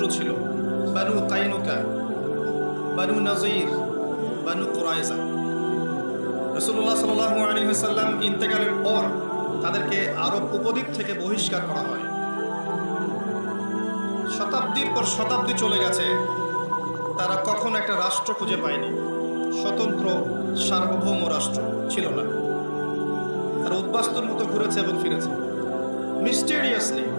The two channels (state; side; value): inverted; both; correlation -1.00